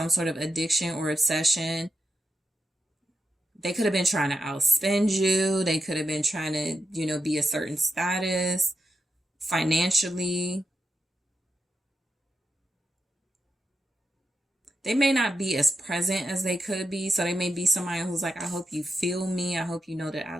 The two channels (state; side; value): normal; both; correlation 0.86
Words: sort of addiction or obsession. They could have been trying to outspend you. They could have been trying to, be a certain status financially. They may not be as present as they could be. So they may be somebody who's like, I hope you feel me. I hope you know that I